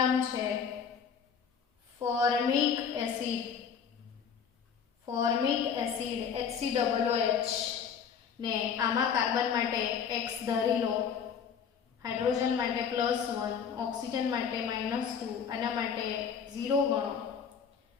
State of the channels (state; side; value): quieter; right; 7.1 dB